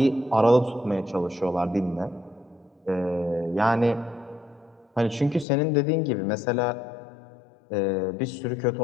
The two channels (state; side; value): drops out; right; at 5.5 s